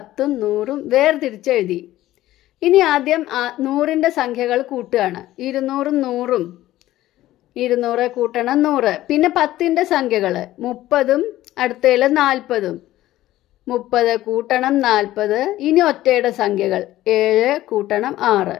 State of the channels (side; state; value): right; quieter; 15.1 dB